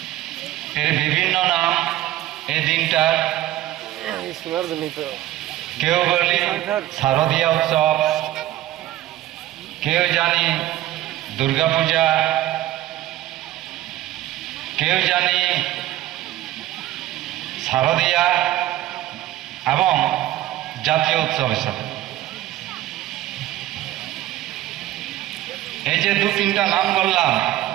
এর বিভিন্ন নাম এই দিনটার, কেউ বলি শারদীয়া উৎসব, কেউ জানি দুর্গাপূজা, কেউ জানি শারদীয়া এবং জাতীয় উৎসব হিসাবে। এই যে 2-3টা নাম বললাম,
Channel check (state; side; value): quieter; left; 14.7 dB